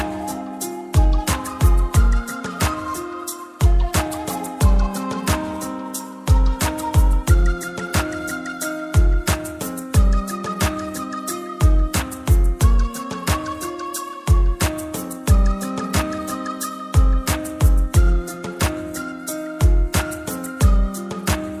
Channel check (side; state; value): both; identical; correlation 1.00